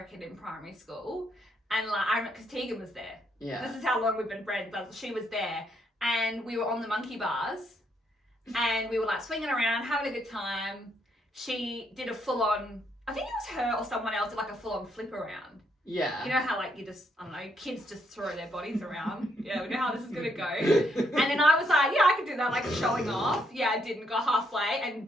in primary school, and because Tegan was there. Yeah. This is how long we've been friends. But she was there, and we were on the monkey bars, and we were swinging around, having a good time. She did a full-on. I think it was her or someone else did a full-on flip around. Yeah. You know how like you just, I don't know, kids just throw their bodies around. Yeah, we know how this is gonna go. And then I was like, yeah, I could do that, like showing off. Yeah, I didn't go halfway and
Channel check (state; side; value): normal; both; correlation 0.75